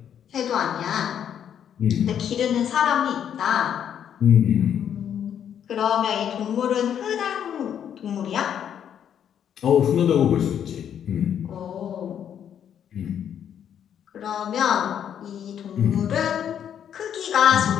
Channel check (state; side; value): quieter; right; 9.1 dB